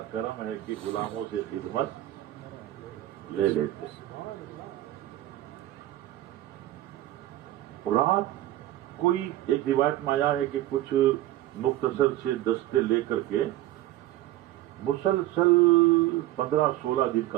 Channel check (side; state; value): left; quieter; 14.8 dB